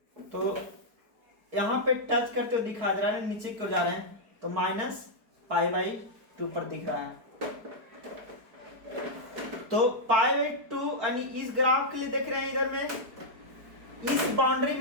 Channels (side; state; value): left; late; 4.6 ms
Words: तो यहां पे टच करते हुए दिखा दे रहा है, नीचे क्यों जा रहे हैं? तो माइनस पाई बाई टू पर दिख रहा है। तो पाई बाई टू यानी इस ग्राफ के लिए देख रहे हैं इधर में इस बाउंड्री